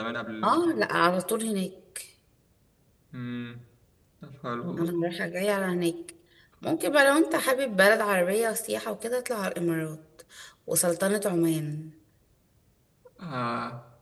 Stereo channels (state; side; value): identical; both; correlation 1.00